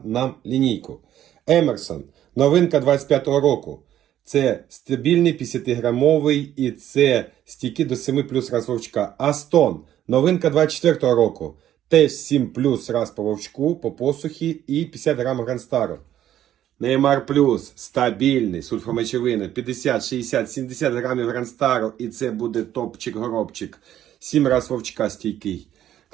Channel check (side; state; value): left; quieter; 11.7 dB